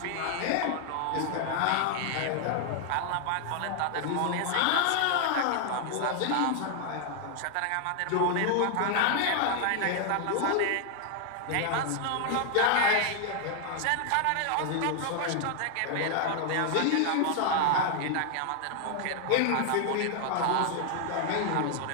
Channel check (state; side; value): different; both; correlation 0.00